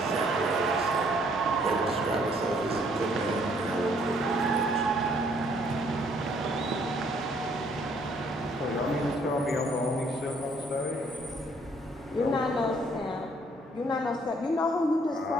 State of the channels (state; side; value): normal; both; correlation 0.64